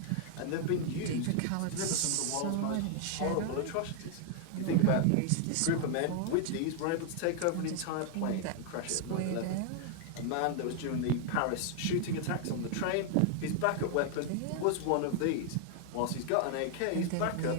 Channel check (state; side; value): different; both; correlation 0.00